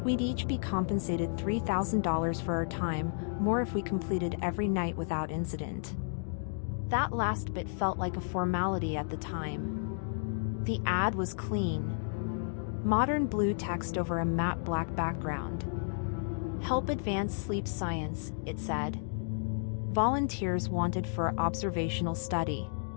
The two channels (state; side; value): silent; right; digital silence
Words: We'd each be compensated $3,000 for our time, more if we completed every night without incident. That last bit felt like a formality at the time. The ad was clean. Modern blue text over a matte black background. Help advance sleep science, it said. Volunteers wanted for observational study.